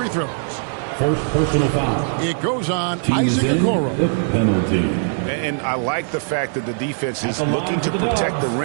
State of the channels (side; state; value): left; silent; 65 dB below the other